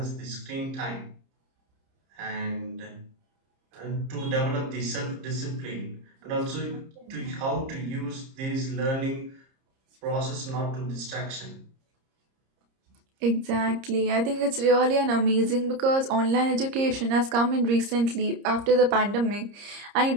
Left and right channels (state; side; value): late; left; 30 ms